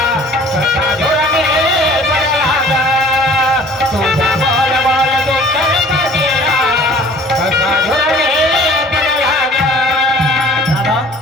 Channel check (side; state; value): both; normal; correlation 0.50